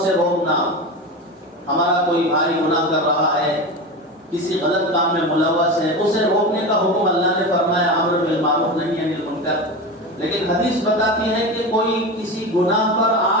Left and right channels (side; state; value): both; normal; correlation 0.24